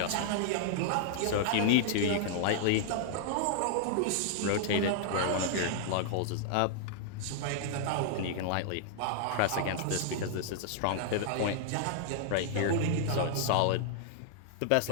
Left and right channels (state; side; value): different; both; correlation -0.01